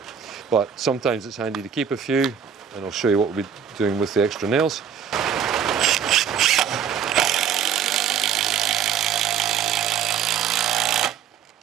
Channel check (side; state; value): left; quieter; 7.8 dB